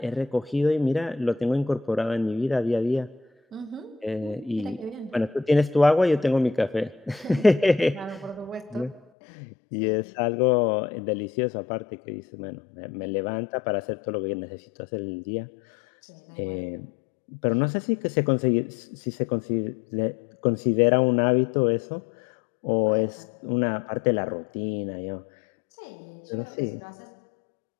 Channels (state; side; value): drops out; right; at 9.0 s